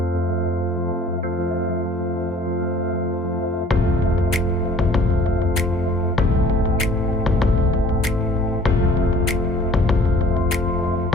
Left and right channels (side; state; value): both; normal; correlation 0.52